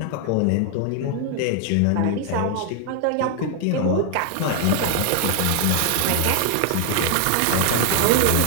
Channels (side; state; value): both; different; correlation 0.00